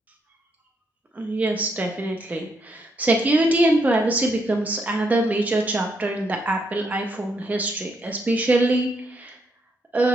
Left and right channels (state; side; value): normal; both; correlation 0.76